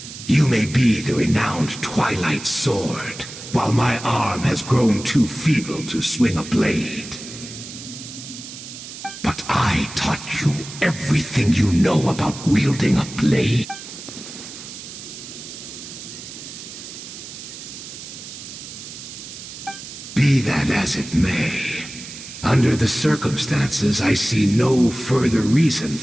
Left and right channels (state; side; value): noise; right; hiss, 12 dB below the sound